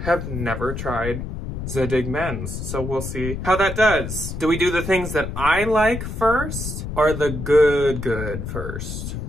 have never tried Zadig men's, so we'll see how that does. Do we do the things that I like first, or the good first?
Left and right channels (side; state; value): left; noise; rumble, 6 dB below the sound